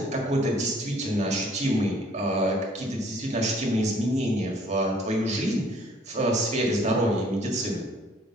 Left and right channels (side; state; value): both; normal; correlation 0.59